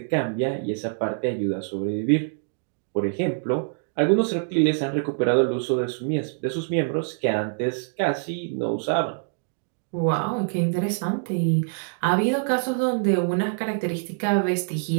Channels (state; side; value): silent; left; digital silence